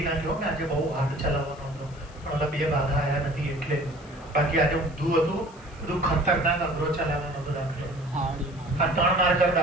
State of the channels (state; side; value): noise; left; hiss, 27 dB below the sound